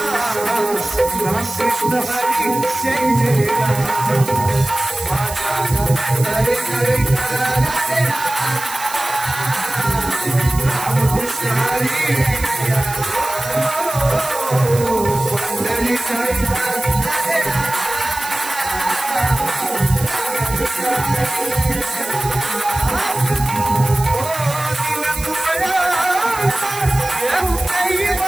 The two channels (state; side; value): noise; right; hiss, 11 dB below the sound